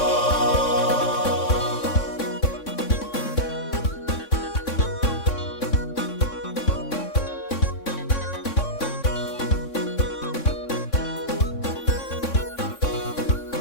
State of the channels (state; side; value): late; right; 3.6 ms